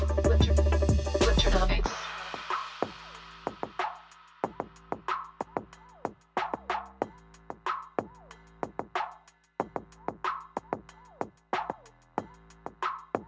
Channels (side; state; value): both; identical; correlation 1.00